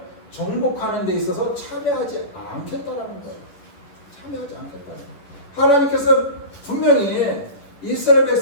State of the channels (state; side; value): late; right; 11 ms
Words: 정복하는 데 있어서 참여하지 않겠다라는 거예요. 참여하지 않겠다는 거예요. 하나님께서 분명히 이스라엘